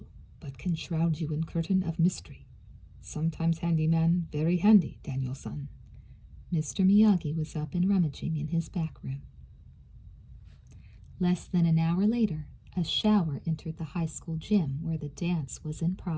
but can shroud you in curtain of mystery. Sometimes handyman very handy, Daniel-san. Mr. Miyagi was up and rummaging in his back room. Less than an hour later, a shower entered the high school gym where the dance was in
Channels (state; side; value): identical; both; correlation 1.00